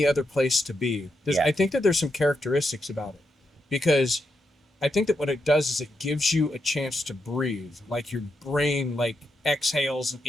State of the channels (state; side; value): normal; both; correlation 0.83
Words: other place to be. I think that there's some characteristics about it, because I think that what it does is it gives you a chance to breathe, like your brain like exhales and